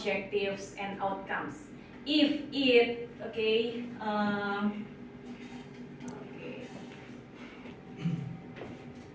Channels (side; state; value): both; identical; correlation 1.00